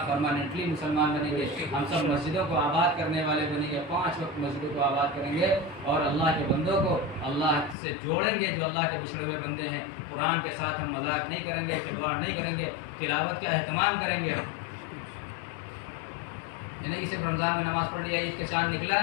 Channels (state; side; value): drops out; right; at 7.8 s